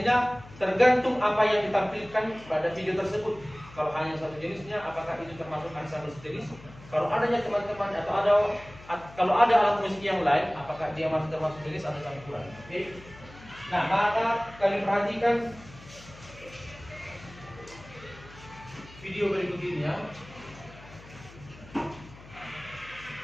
tergantung apa yang ditampilkan pada video tersebut. Kalau hanya satu jenisnya, apakah itu termasuk ensemble sejenis? Kalau adanya teman-teman kalau ada alat musik yang lain, apakah dia masih termasuk jenis atau campuran? Oke. Nah, maka kalian perhatikan video berikut ini ya.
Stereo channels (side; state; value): left; noise; hum, 20 dB below the sound